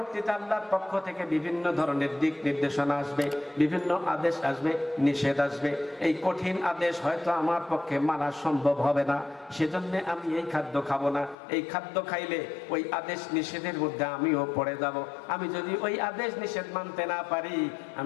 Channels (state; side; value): drops out; right; at 11.4 s